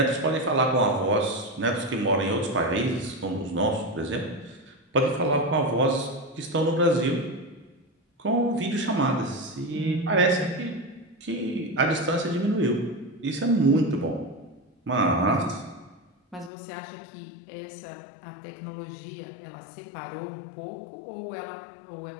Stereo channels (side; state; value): right; drops out; at 16.5 s